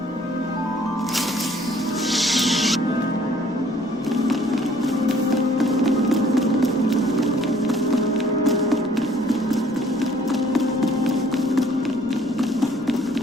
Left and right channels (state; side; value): noise; left; rumble, 26 dB below the sound